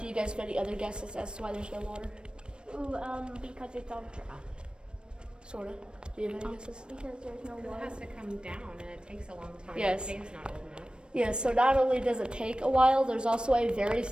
you guys have any other guesses as to why there's no water? Ooh, because it's all dry. Sort of. Do you have any guesses? Because there's no It water. has to come down and it takes a long time. Yes. The cave's not old enough. Yeah, so not only does it take a while, there's also a very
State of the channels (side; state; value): left; late; 0.054 ms